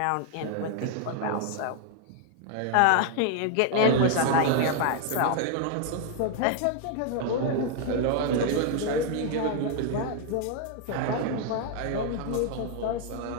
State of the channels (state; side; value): different; both; correlation 0.00